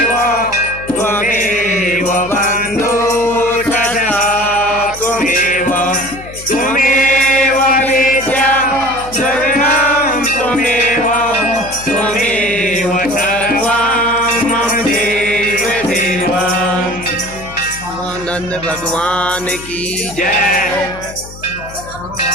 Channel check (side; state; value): left; noise; hum, 16 dB below the sound